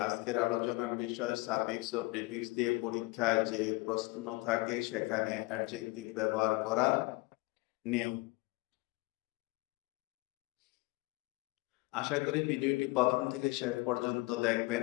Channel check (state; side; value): quieter; right; 23.7 dB